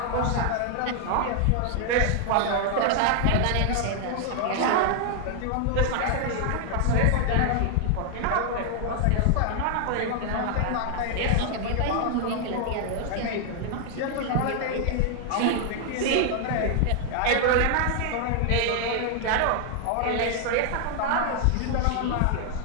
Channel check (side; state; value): both; different; correlation 0.00